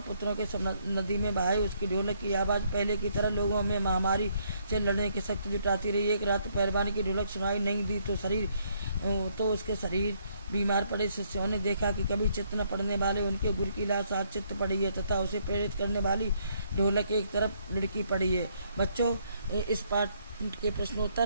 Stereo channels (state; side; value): inverted; both; correlation -0.71